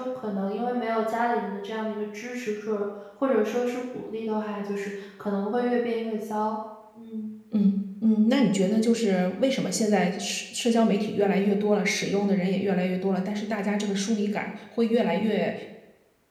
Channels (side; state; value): both; identical; correlation 1.00